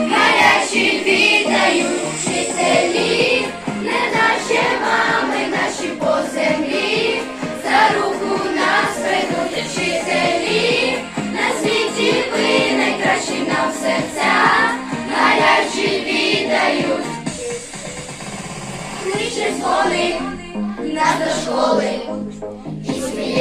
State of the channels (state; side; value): identical; both; correlation 1.00